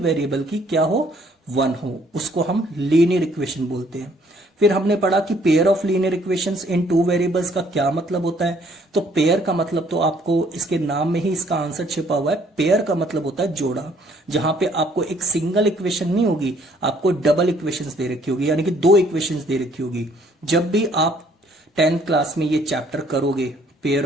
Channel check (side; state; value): both; normal; correlation 0.63